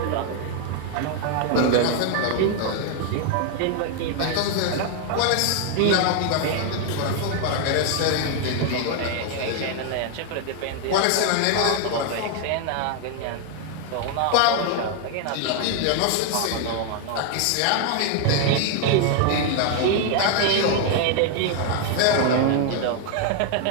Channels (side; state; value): both; different; correlation 0.00